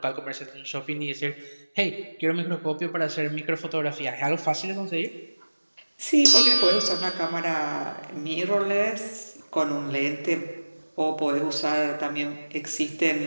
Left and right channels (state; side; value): inverted; both; correlation -1.00